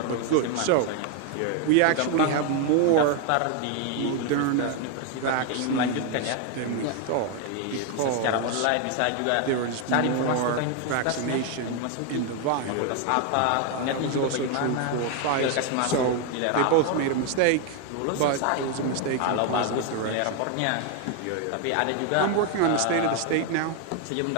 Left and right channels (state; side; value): different; both; correlation 0.01